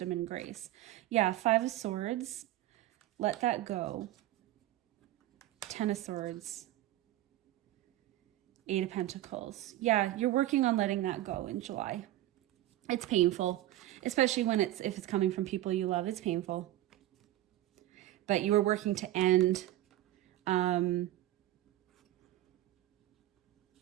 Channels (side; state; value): left; quieter; 14.7 dB